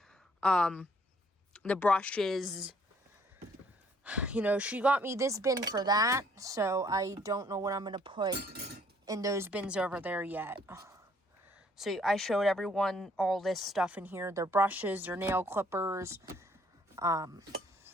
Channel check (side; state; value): both; normal; correlation 0.63